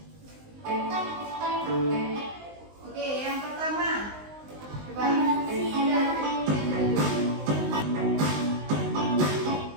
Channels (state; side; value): late; left; 19 ms